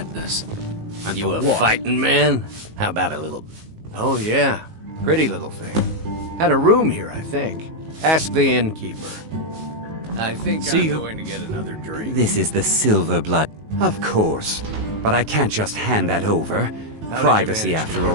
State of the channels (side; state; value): left; late; 19 ms